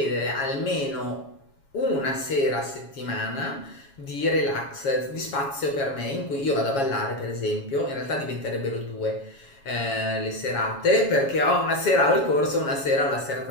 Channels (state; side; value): late; right; 7.2 ms